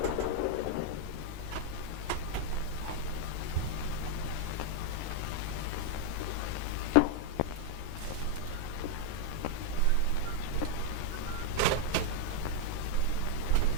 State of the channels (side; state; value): both; different; correlation 0.00